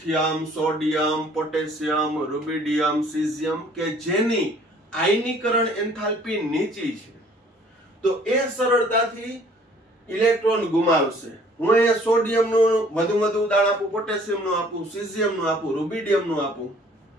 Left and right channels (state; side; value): normal; both; correlation 0.56